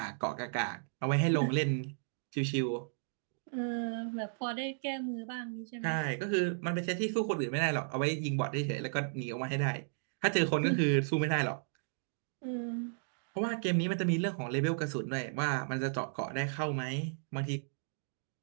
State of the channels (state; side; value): silent; left; digital silence